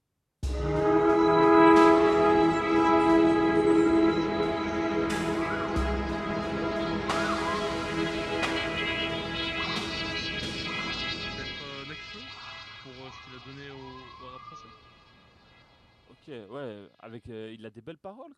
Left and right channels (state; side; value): identical; both; correlation 1.00